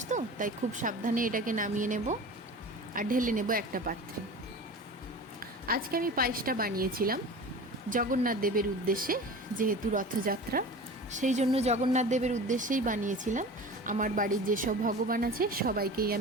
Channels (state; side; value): normal; both; correlation 0.36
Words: তো, তাই খুব সাবধানে এটাকে নামিয়ে নেব আর ঢেলে নেব একটা পাত্রে। আজকে আমি পায়েসটা বানিয়েছিলাম জগন্নাথ দেবের উদ্দেশ্যে, যেহেতু রথযাত্রা সেই জন্য জগন্নাথ দেবের উদ্দেশ্যেই বানিয়েছিলাম। আমার বাড়ির যেসব ভগবান আছে সবাইকেই